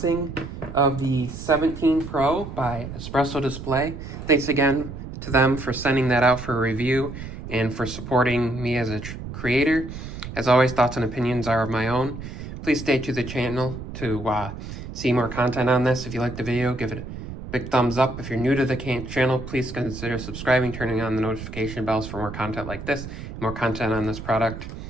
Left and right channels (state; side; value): noise; right; rumble, 10 dB below the sound